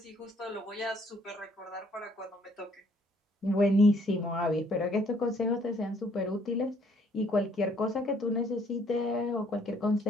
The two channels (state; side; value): normal; both; correlation 0.63